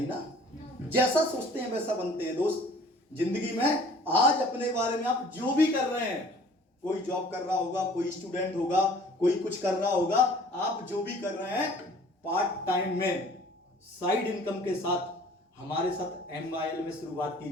ना। जैसा सोचते हैं वैसा बनते हैं दोस्त। जिंदगी में आज अपने बारे में आप जो भी कर रहे हैं, कोई जॉब कर रहा होगा, कोई स्टूडेंट होगा, कोई कुछ कर रहा होगा, आप जो भी कर रहे हैं पार्ट टाइम में, साइड इनकम के साथ हमारे साथ MYL में शुरुआत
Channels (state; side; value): normal; both; correlation 0.51